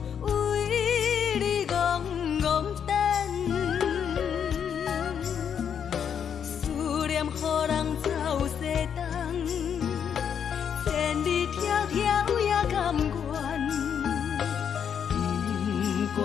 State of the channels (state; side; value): quieter; right; 7.9 dB